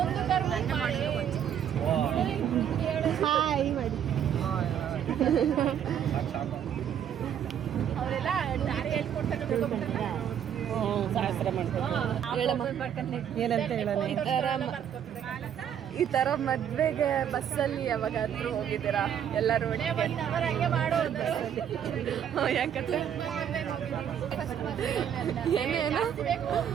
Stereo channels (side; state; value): left; quieter; 9.2 dB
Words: ಹಾಯ್ ಮಾಡಿ ಅವರೆಲ್ಲ ದಾರಿ ಹೇಳ್ಕೊಡ್ತಾರೆ. ಈ ತರ ಮದ್ವೆಗೆ ಬಸ್ಸಲ್ಲಿ ಯಾವಾಗಾದ್ರೂ ಹೋಗಿದ್ದೀರಾ ಎಲ್ಲರೂ? ಯಾಕಂದ್ರೆ ಏನೇನು